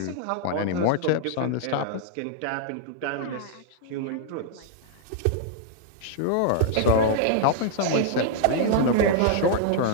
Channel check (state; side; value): different; both; correlation -0.01